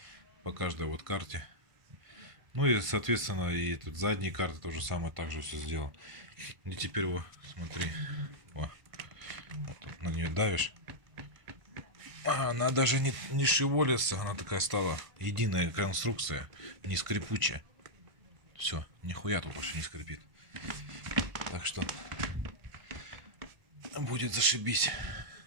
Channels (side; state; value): left; late; 1.5 ms